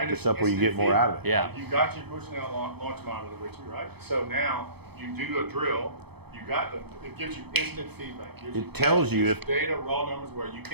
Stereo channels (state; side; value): late; left; 0.98 ms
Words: up where you get more out of it. Yeah. You got your Bushnell launch monitor with you, right? So now you do a drill. You got it gives you instant feedback. It tells you if data, raw numbers where you